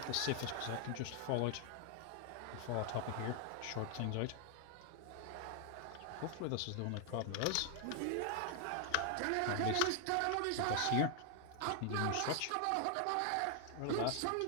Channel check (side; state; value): both; different; correlation 0.00